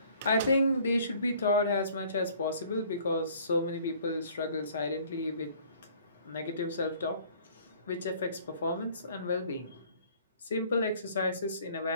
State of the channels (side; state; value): both; inverted; correlation -0.55